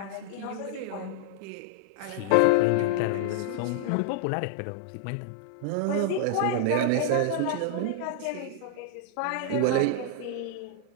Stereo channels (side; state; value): both; different; correlation -0.01